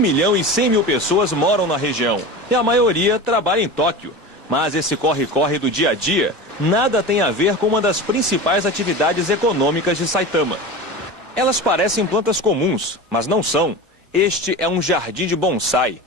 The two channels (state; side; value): normal; both; correlation 0.30